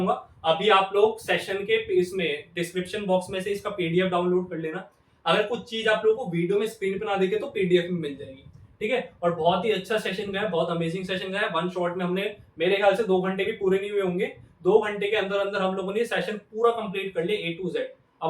अभी आप लोग सेशन के इसमें डिस्क्रिप्शन बॉक्स में से इसका पीडीएफ डाउनलोड कर लेना। अगर कुछ चीज आप लोगों को वीडियो में स्क्रीन पे ना दिखे तो पीडीएफ में मिल जाएगी, ठीक है। और बहुत ही अच्छा सेशन गया, बहुत अमेजिंग सेशन गया। वन शॉट में हमने, मेरे ख्याल से 2 घंटे भी पूरे नहीं हुए होंगे, 2 घंटे के अंदर अंदर हम लोगों ने सेशन पूरा कंप्लीट कर लिया A to Z।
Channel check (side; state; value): both; identical; correlation 1.00